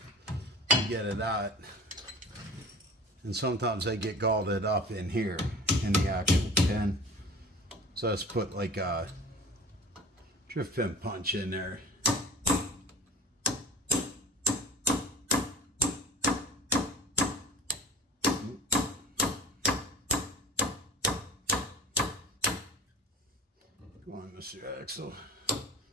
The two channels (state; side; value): normal; both; correlation 0.39